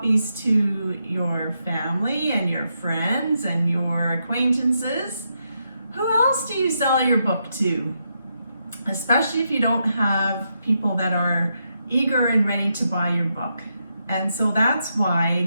to your family and your friends and your acquaintances, who else do you sell your book to? Especially if you don't have people that are eager and ready to buy your book. And so that's why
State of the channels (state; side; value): inverted; both; correlation -0.82